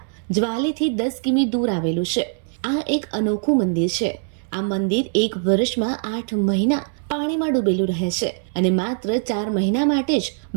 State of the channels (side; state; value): left; silent; 64 dB below the other